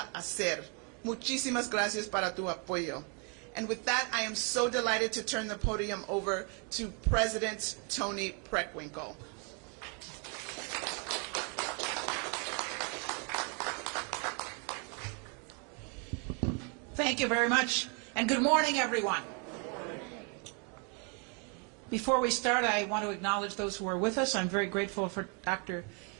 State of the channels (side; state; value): left; quieter; 36.8 dB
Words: hacer. Muchísimas gracias para tu apoyo. And with that, I am so delighted to turn the podium over to President Tony Preckwinkle. Thank you very much, and good morning, everyone. Before we start, I want to acknowledge those who are with us. I'm very grateful for Dr.